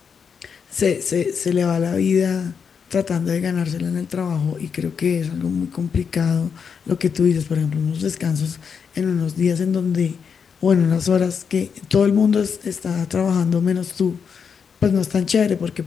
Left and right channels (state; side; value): quieter; right; 6.5 dB